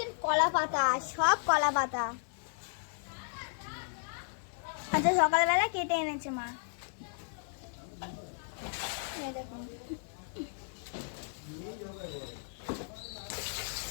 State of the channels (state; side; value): silent; right; 55 dB below the other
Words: কলা পাতা, সব কলা পাতা। আচ্ছা সকালবেলা কেটে এনেছে মা। এই দেখুন,